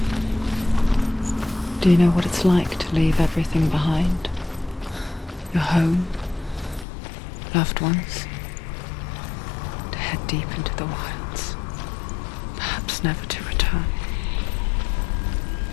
Do you know what it's like to leave everything behind? Your home, loved ones, to head deep into the wilds, perhaps never to return.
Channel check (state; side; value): drops out; right; at 6.9 s